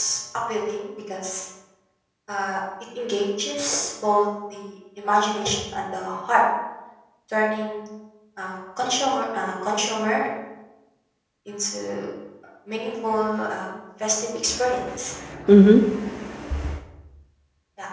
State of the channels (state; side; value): identical; both; correlation 1.00